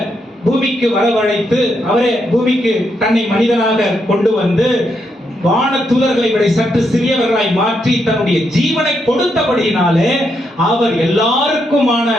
பூமிக்கு வரவழைத்து, அவரே பூமிக்கு தன்னை மனிதனாக கொண்டு வந்து வான தூதர்களை விட சற்று சிறியவர்களாய் மாற்றி தன்னுடைய ஜீவனை கொடுத்தபடியினாலே அவர் எல்லாருக்குமான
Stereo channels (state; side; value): normal; both; correlation 0.79